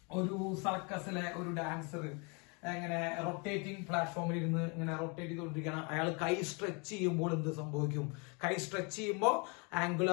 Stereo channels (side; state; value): right; quieter; 32.4 dB